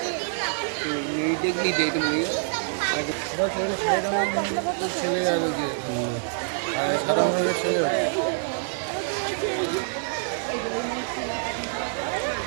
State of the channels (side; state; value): left; silent; digital silence